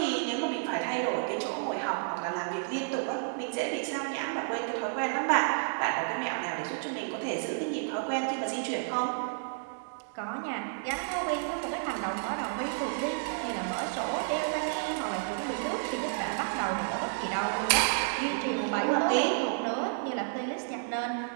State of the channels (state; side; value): silent; left; digital silence